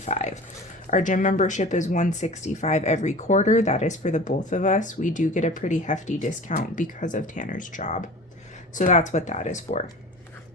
Our gym membership is $165 every quarter. That is for the both of us. We do get a pretty hefty discount because of Tanner's job. So that's what that is for.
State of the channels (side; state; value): both; normal; correlation 0.38